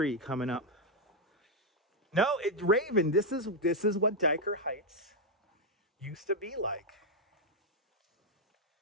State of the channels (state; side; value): normal; both; correlation 0.02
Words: coming up. No, Raven, this is what Dyker Heights used to be like.